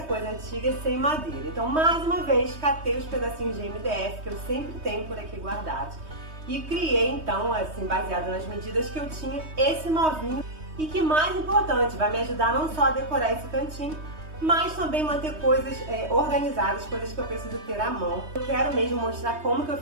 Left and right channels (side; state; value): left; late; 3.2 ms